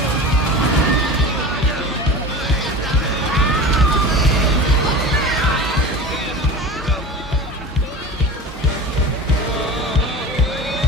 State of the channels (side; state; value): both; normal; correlation 0.33